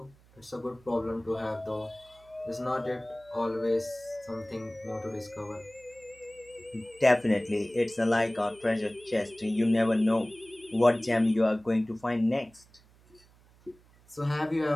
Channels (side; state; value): right; noise; hum, 28 dB below the sound